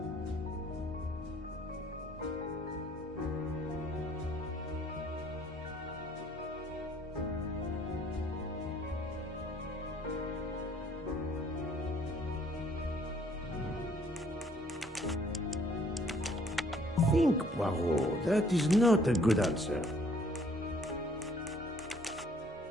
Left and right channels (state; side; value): normal; both; correlation 0.60